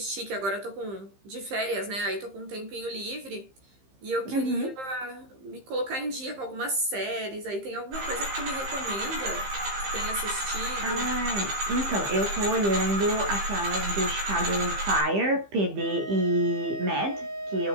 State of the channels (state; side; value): late; left; 15 ms